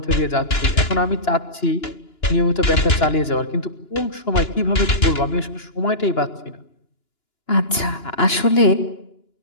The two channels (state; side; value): late; right; 2.9 ms